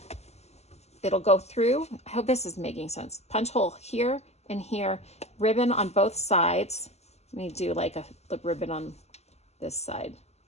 it'll go through. I hope this is making sense. Punch hole here and here, ribbon on both sides. Let me do like a ribbon on this side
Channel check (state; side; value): late; right; 0.31 ms